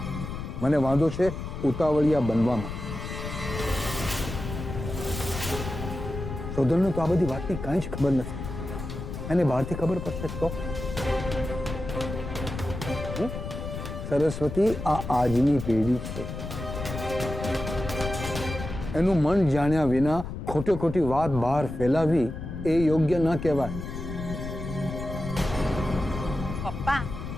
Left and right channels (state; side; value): noise; left; rumble, 7 dB below the sound